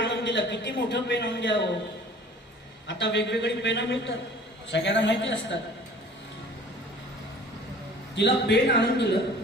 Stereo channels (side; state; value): both; normal; correlation 0.47